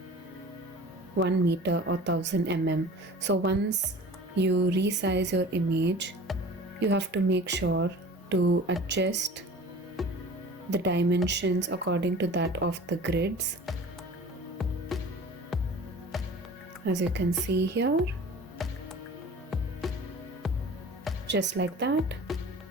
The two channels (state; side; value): normal; both; correlation 0.41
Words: 1 meter or 1000 mm. So once you resize your image, you have to make sure to adjust the dimensions according to that of the grids, as you can see here, just like that.